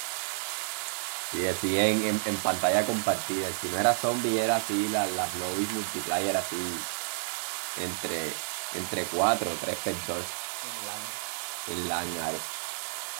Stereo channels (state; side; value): silent; left; digital silence